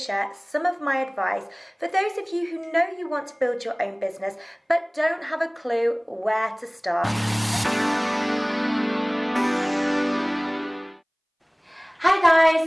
some of my advice for those of you who know you want to build your own business but don't have a clue where to start. Hi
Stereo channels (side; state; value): both; identical; correlation 1.00